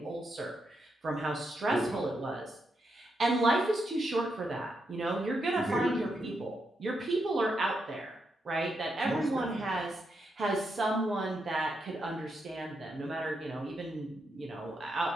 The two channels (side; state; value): both; normal; correlation 0.82